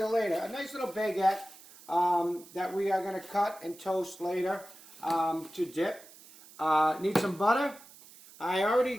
later. A nice little baguette that we are going to cut and toast later to dip. Need some butter. I already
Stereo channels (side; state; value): right; noise; hiss, 21 dB below the sound